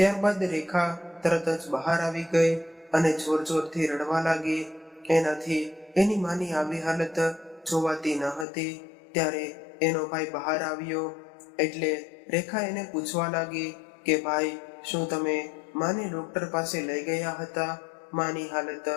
રેખા તરત જ બહાર આવી ગઈ અને જોરથી રડવા લાગી. એનાથી એની માની આવી હાલત જોવાતી ન હતી. ત્યારે એનો ભાઈ બહાર આવ્યો. એટલે રેખા એને પૂછવા લાગી કે ભાઈ, શું તમે માને ડોક્ટર પાસે લઈ ગયા હતા? માની હાલત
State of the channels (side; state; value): right; drops out; at 8.5 s